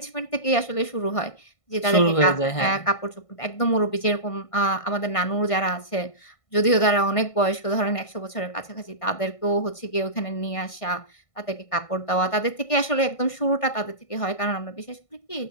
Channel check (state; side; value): late; right; 1.5 ms